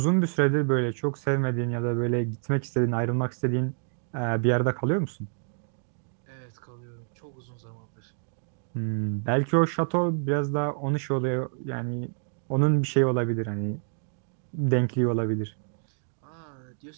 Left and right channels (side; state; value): left; silent; digital silence